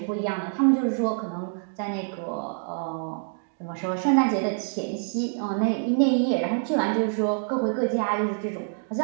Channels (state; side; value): silent; left; digital silence